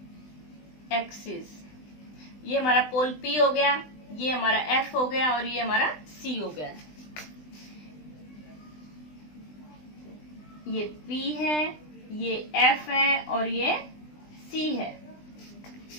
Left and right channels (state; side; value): late; right; 20 ms